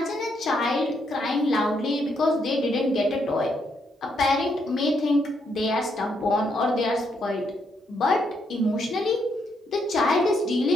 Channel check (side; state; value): both; normal; correlation 0.76